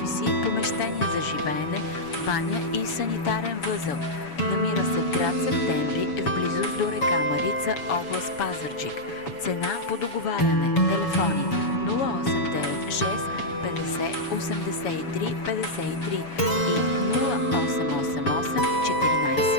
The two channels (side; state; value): right; late; 7.1 ms